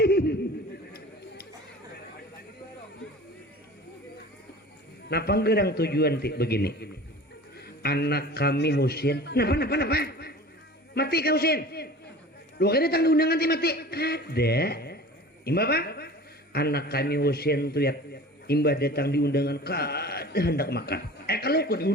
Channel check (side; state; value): both; normal; correlation 0.40